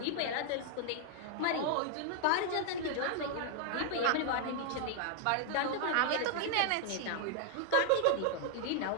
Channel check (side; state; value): both; different; correlation 0.00